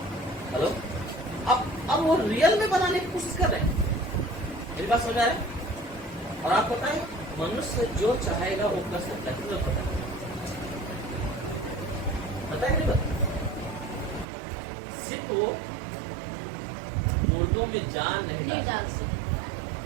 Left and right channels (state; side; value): drops out; left; at 14.2 s